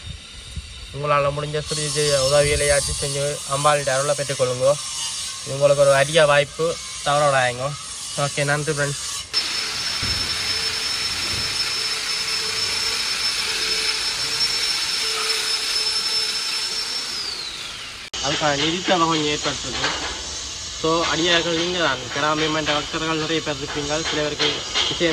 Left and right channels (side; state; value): both; identical; correlation 1.00